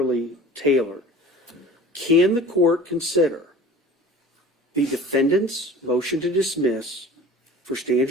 tailored. Can the court consider the defendant's motion to dismiss for stand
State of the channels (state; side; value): normal; both; correlation 0.42